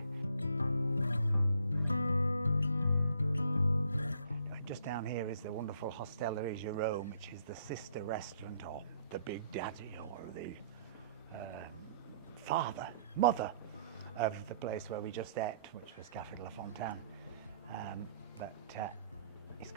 Just down here is the wonderful Hostellerie Jerome, which is the sister restaurant, or the big daddy, or the mother of the place where we just ate, which was Café de la Fontaine. But it's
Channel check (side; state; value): both; inverted; correlation -0.64